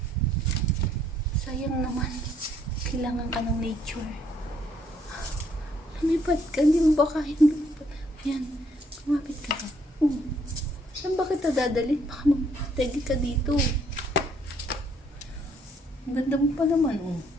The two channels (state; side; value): normal; both; correlation 0.68